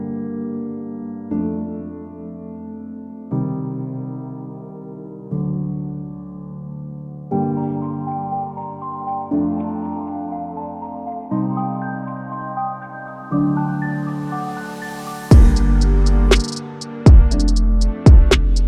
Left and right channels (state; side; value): identical; both; correlation 1.00